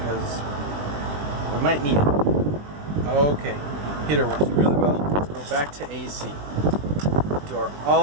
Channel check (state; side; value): late; left; 20 ms